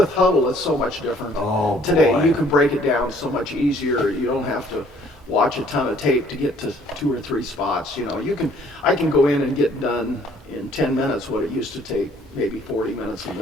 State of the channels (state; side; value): normal; both; correlation 0.60